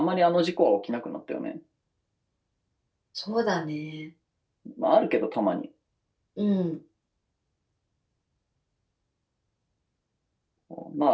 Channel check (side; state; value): both; identical; correlation 1.00